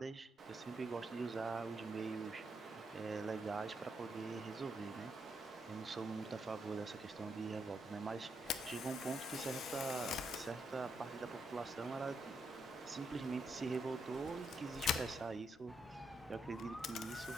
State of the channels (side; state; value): both; normal; correlation 0.79